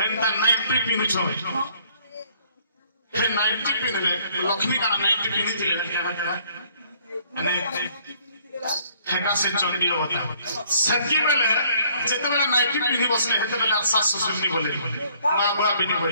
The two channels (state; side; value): inverted; both; correlation -0.62